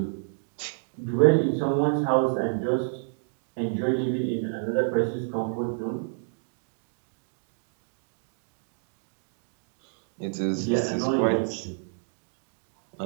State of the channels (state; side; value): silent; left; digital silence